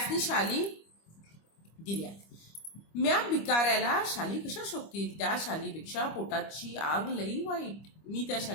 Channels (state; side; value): late; right; 25 ms